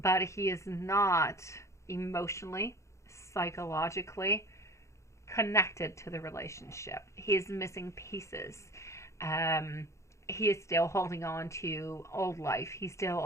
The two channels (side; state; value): right; late; 0.14 ms